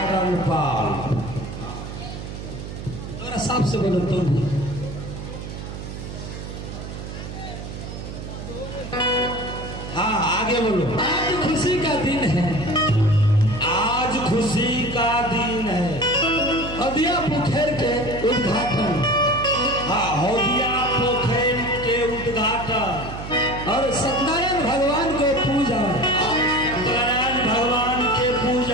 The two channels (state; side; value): noise; right; hum, 9 dB below the sound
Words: रणपाल। थोड़ा साफ से बोलो तुम। हाँ आगे बोलो। आज खुशी का दिन है, आज खुशी का दिन है। हदिया पोखर के उद्घाटन। हाँ, हदिया पोखर के उद्घाटन और सत्यनारायण भगवान को पूजा